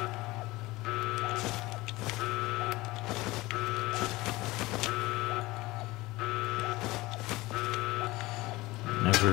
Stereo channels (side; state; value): right; quieter; 20.1 dB